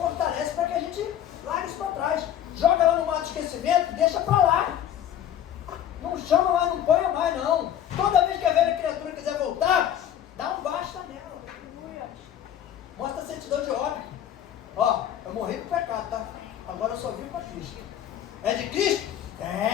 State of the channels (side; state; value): right; quieter; 10.4 dB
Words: para que a gente largue isso para trás. Joga lá no mar do esquecimento, deixa para lá. Não chama mais, não ponha mais, não. Toda vez que a velha criatura quiser voltar, dá um basta nela. Mostra a certidão de óbito. Ó, eu morri pro pecado, tá? Agora eu só vivo para Cristo. É de Cristo?